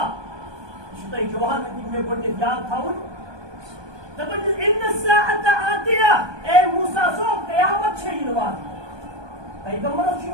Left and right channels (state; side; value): late; left; 1.2 ms